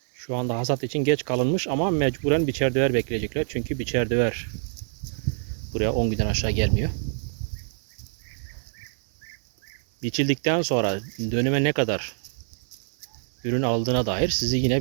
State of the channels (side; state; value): left; silent; digital silence